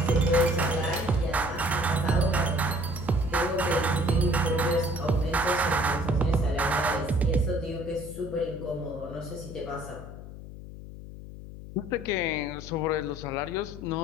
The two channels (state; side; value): noise; left; hum, 13 dB below the sound